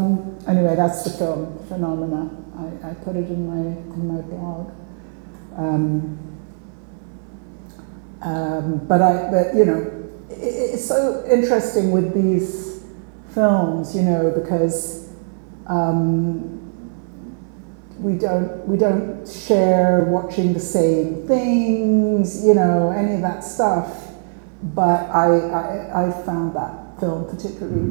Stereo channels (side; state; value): left; silent; digital silence